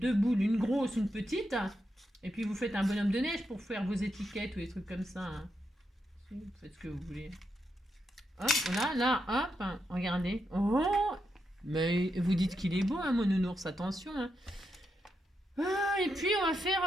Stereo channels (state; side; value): normal; both; correlation 0.84